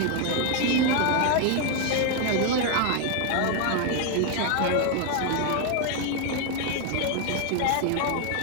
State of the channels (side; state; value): both; different; correlation 0.01